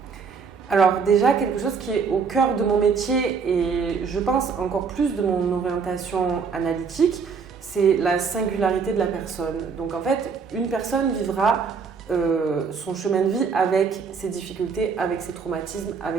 Alors déjà, quelque chose qui est au cœur de mon métier et je pense encore plus de mon orientation analytique, c'est la singularité de la personne. Donc en fait, une personne vivra son chemin de vie avec ses difficultés, avec ses traumatismes,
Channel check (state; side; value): quieter; left; 5.6 dB